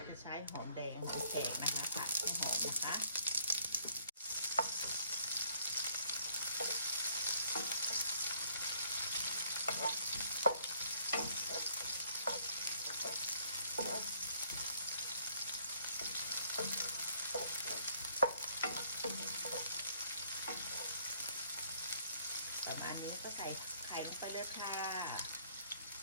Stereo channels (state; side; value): inverted; both; correlation -0.64